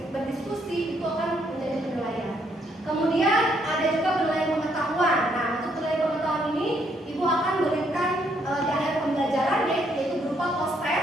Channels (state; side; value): normal; both; correlation 0.72